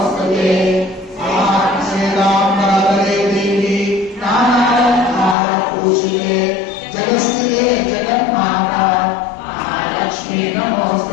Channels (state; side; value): drops out; right; at 5.4 s